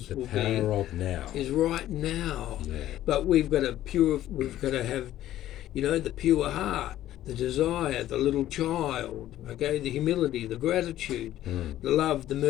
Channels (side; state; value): right; quieter; 13.3 dB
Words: will be. The power of now is right now. Yeah. But we've got to have, the pure heart, the desire, the little child, okay, the humility, the gratitude, the love, the